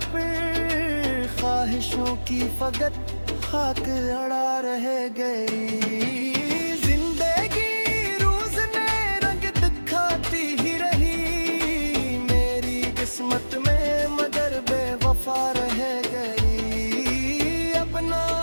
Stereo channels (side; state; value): both; inverted; correlation -1.00